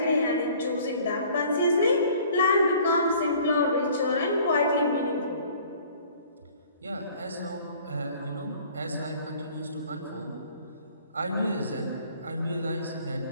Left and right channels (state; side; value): inverted; both; correlation -0.52